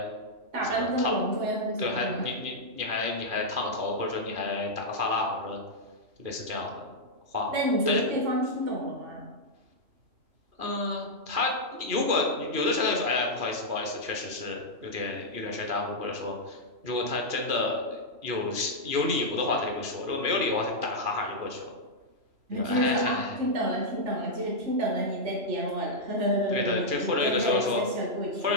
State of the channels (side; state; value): left; late; 3.0 ms